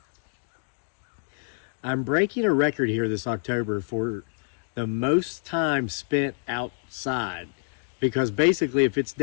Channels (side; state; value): right; silent; 59 dB below the other